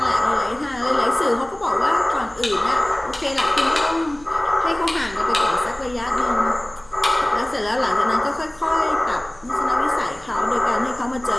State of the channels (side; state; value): right; noise; hum, 25 dB below the sound